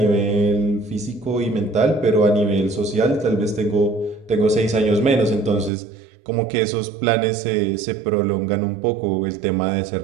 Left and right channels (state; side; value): drops out; left; at 5.7 s